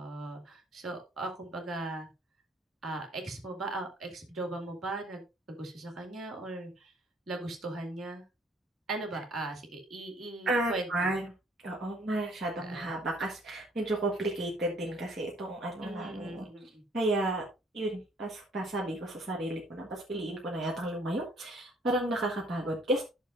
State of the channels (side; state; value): both; normal; correlation 0.60